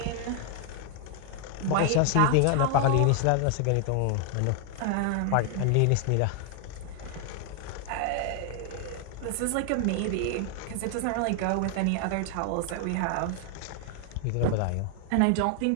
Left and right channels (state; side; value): different; both; correlation 0.00